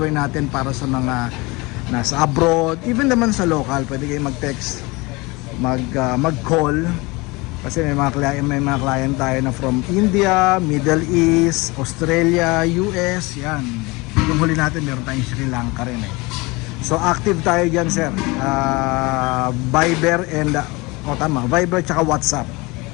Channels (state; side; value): quieter; right; 24.5 dB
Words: natin para sa mga nasa abroad, even naman sa local. Pwede kayong mag-text, mag-call kasi may mga client tayo na from India, Middle East, Australia, US. Yan, yung huli natin meron tayong Sri Lanka rin So active tayo dyan sir. Viber and Viber tsaka WhatsApp.